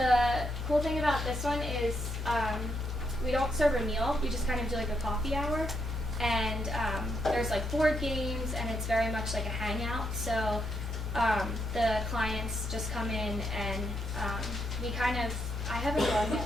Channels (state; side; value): normal; both; correlation 0.79